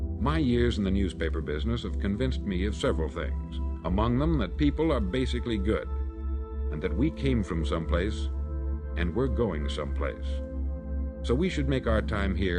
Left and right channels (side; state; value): both; identical; correlation 1.00